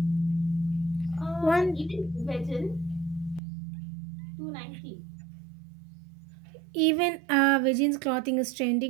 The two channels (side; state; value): left; drops out; at 3.4 s